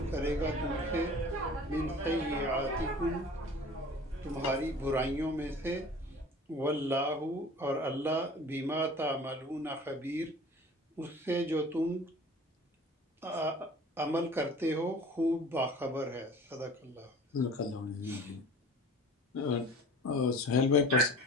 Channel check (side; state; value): both; normal; correlation 0.44